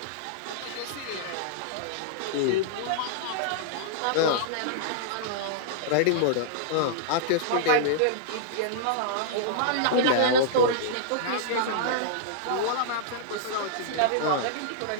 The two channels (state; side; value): different; both; correlation -0.02